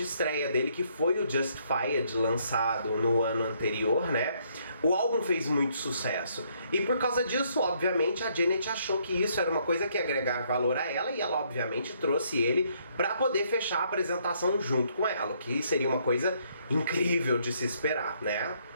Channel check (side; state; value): both; inverted; correlation -0.69